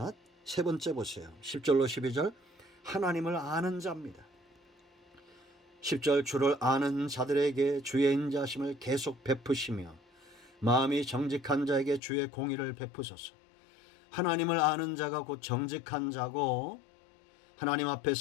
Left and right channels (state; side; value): drops out; right; at 12.0 s